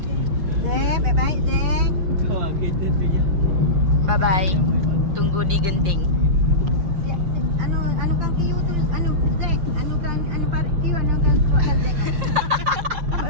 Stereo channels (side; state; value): left; late; 5.6 ms